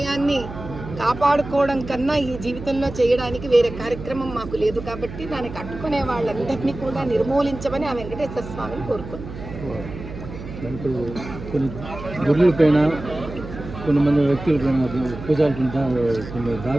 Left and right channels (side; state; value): right; noise; hum, 11 dB below the sound